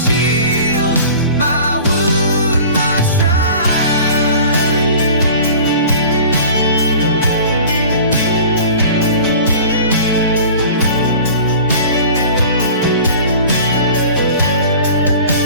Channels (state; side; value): inverted; both; correlation -0.42